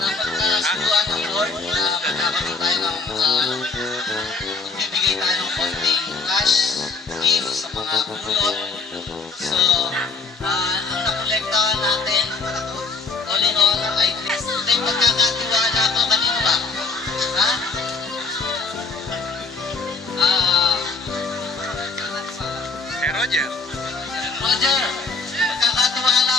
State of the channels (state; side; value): quieter; right; 4.3 dB